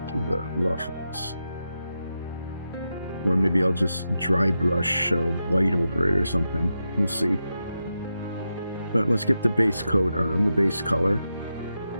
the ruffles. Or maybe I'll just dry brush white over it or something. We'll see. But let's get the base coat on, the base color.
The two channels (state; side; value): inverted; both; correlation -0.88